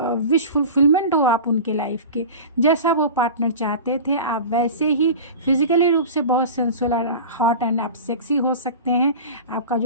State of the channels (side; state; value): both; inverted; correlation -0.33